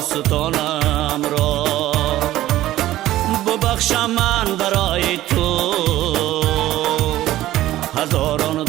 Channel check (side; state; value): left; quieter; 14.8 dB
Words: را، ببخشم من برای تو هزاران